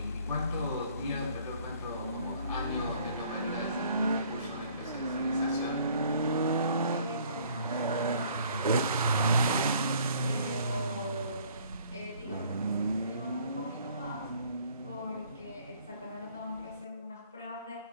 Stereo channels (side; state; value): both; inverted; correlation -0.58